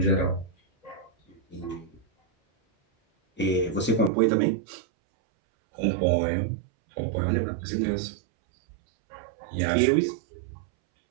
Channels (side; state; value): left; drops out; at 4.1 s